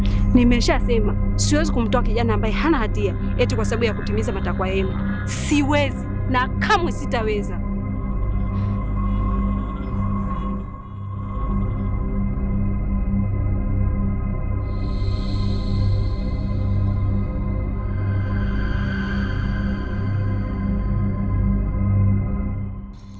Nimeshasema siwezi kumtoa kijana ambaye hana hatia eti kwa sababu ya kutimiza matakwa yenu. Siwezi na kamwe sitaweza.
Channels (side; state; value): both; identical; correlation 1.00